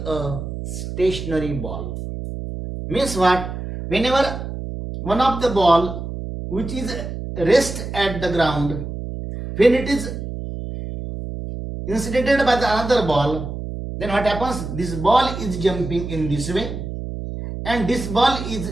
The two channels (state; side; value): noise; right; hum, 7 dB below the sound